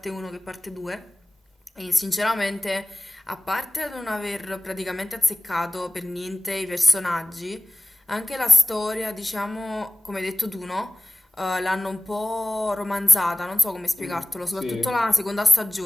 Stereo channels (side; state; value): both; normal; correlation 0.97